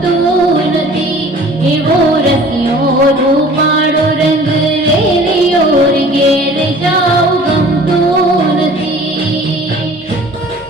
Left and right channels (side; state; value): both; normal; correlation 0.48